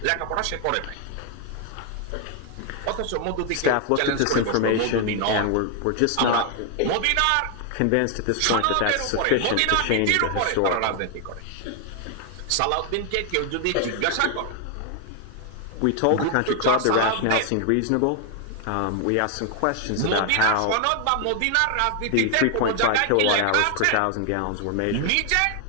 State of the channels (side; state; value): both; different; correlation 0.00